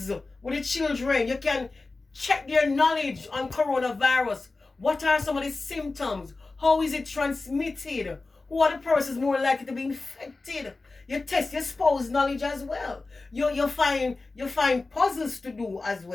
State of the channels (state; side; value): quieter; right; 3.5 dB